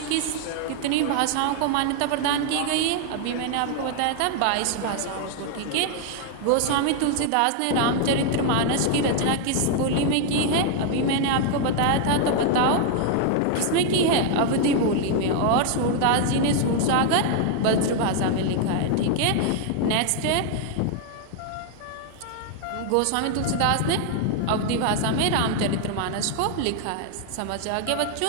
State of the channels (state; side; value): different; both; correlation 0.00